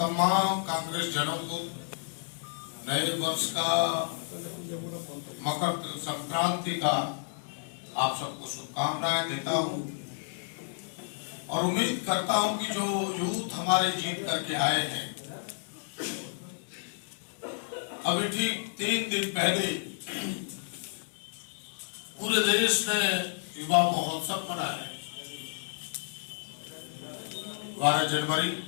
कांग्रेस जनों को नए वर्ष का, मकर संक्रांति का आप सबको शुभकामनाएं देता हूँ और उम्मीद करता हूँ कि जो यूथ हमारे जीत करके आए हैं, अभी ठीक 3 दिन पहले पूरे देश ने युवा महोत्सव मनाया 12 जनवरी।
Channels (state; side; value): silent; right; 57 dB below the other